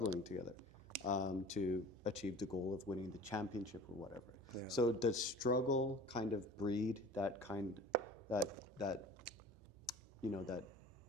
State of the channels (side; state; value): both; normal; correlation 0.43